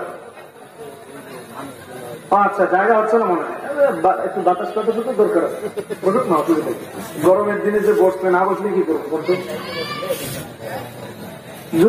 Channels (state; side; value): identical; both; correlation 1.00